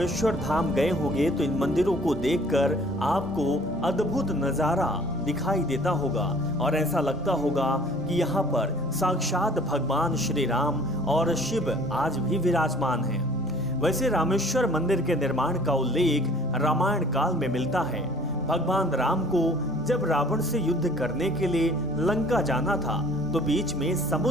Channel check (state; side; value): normal; both; correlation 0.52